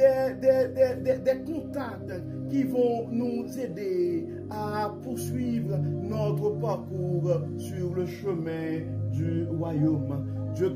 contacts qui vont nous aider à poursuivre notre parcours sur le chemin du royaume. Dieu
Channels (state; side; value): identical; both; correlation 1.00